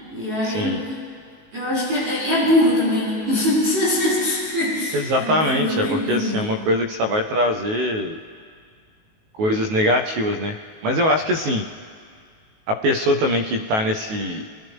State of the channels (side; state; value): left; late; 19 ms